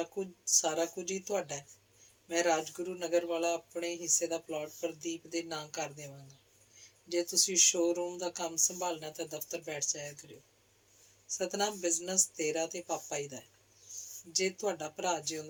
ਕੁਝ ਹੀ ਤੁਹਾਡਾ ਹੈ। ਮੈਂ ਰਾਜਗੁਰੂ ਨਗਰ ਵਾਲਾ ਆਪਣੇ ਹਿੱਸੇ ਦਾ ਪਲਾਟ ਪ੍ਰਦੀਪ ਦੇ ਨਾਂ ਕਰ ਦੇਵਾਂਗਾ। ਜੇ ਤੁਸੀਂ ਸ਼ੋਰੂਮ ਦਾ ਕੰਮ ਸੰਭਾਲਣਾ ਤਾਂ ਦਫ਼ਤਰ ਬੈਠ ਜਾਇਆ ਕਰਿਓ। ਸਤਨਾਮ, ਬਿਜ਼ਨਸ ਤੇਰਾ ਤੇ ਪਾਪਾ ਜੀ ਦਾ ਹੈ। ਜੇ ਤੁਹਾਡਾ ਭਰਾ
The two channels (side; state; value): both; identical; correlation 1.00